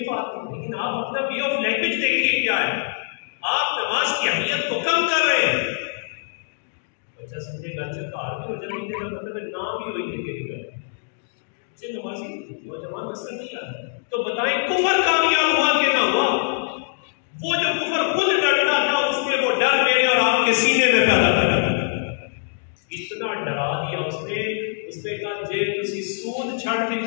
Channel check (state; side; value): silent; right; digital silence